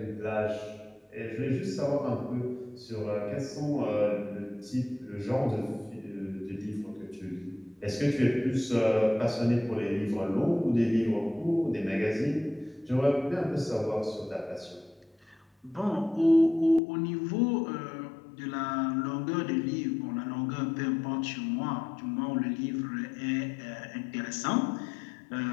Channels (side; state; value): right; drops out; at 16.8 s